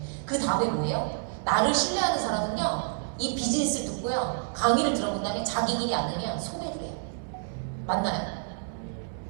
그 다음에 뭐예요? 나를 신뢰하는 사람은요 이 비즈니스를 듣고요 강의를 들어본 다음에 자기 일이 안 되면 소개를 해요. 맞나요?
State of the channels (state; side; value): silent; left; digital silence